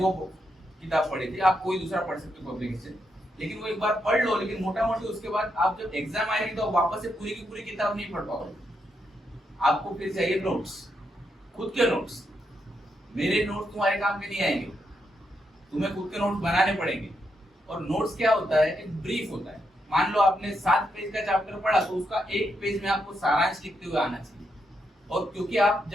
किताब पढ़ी थी, आप कोई दूसरा पढ़ सकते हो पब्लिकेशन, लेकिन वो एक बार पढ़ लो। लेकिन मोटा मोटी उसके बाद आप जब एग्जाम आएगी तो वापस से पूरी की पूरी किताब नहीं पढ़ पाओगे। आपको फिर चाहिए नोट्स, खुद के नोट्स। मेरे नोट्स तुम्हारे काम के नहीं आएंगे, तुम्हें खुद के नोट्स बनाने पड़ेंगे। और नोट्स क्या होता है, एक ब्रीफ होता है। मान लो आपने 7 पेज का चैप्टर पढ़ा तो उसका 1 पेज में आपको सारांश लिखते हुए आना चाहिए। और क्योंकि आप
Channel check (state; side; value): normal; both; correlation 0.81